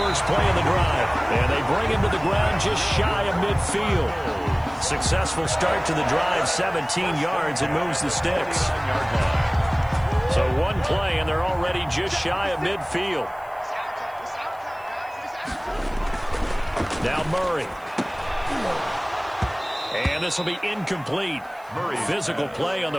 play of the drive. And they bring him to the ground just shy of midfield. Successful start to the drive, 17 yards, and moves the sticks. So 1 play, and they're already just shy of midfield. Now Murray. And this will be incomplete. Physical play on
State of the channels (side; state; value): right; noise; hiss, 29 dB below the sound